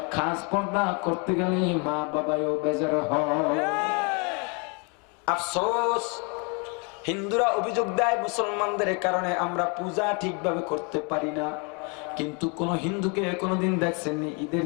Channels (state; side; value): quieter; right; 34.0 dB